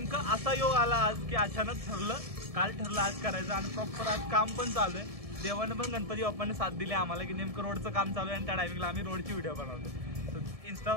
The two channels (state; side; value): late; left; 1.7 ms